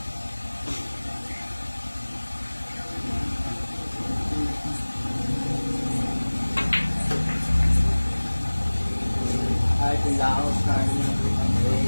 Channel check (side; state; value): both; inverted; correlation -1.00